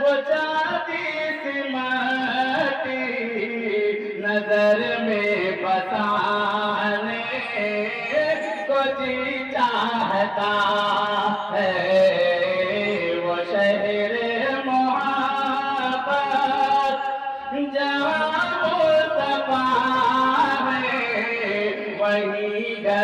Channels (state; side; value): identical; both; correlation 1.00